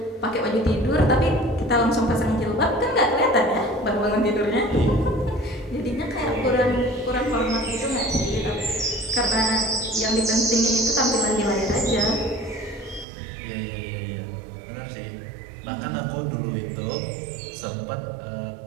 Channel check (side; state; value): left; drops out; at 13.1 s